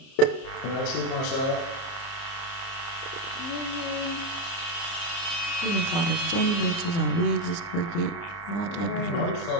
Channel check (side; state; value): right; late; 29 ms